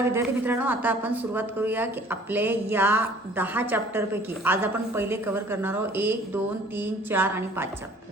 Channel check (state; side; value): normal; both; correlation 0.52